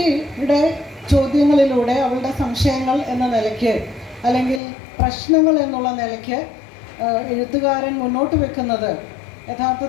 ചോദ്യങ്ങളിലൂടെ അവളുടെ സംശയങ്ങൾ എന്ന നിലയ്ക്ക് അല്ലെങ്കിൽ പ്രശ്നങ്ങൾ എന്നുള്ള നിലയ്ക്ക് എഴുത്തുകാരൻ മുന്നോട്ട് വെക്കുന്നത്,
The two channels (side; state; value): right; drops out; at 4.6 s